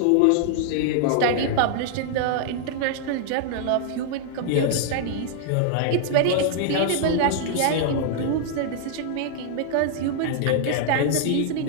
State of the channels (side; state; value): both; different; correlation -0.01